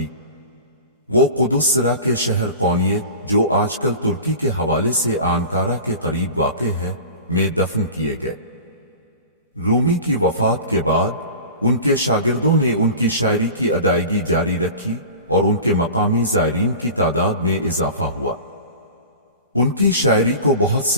وہ قدس سرا کے شہر قونیہ، جو آج کل ترکی کے حوالے سے آنکارا کے قریب واقع ہے، میں دفن کیے گئے۔ رومی کی وفات کے بعد ان کے شاگردوں نے ان کی شاعری کی ادائیگی جاری رکھی اور ان کے مقامی زائرین کی تعداد میں اضافہ ہوا۔ ان کی شاعری کو بہت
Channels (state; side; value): inverted; both; correlation -0.36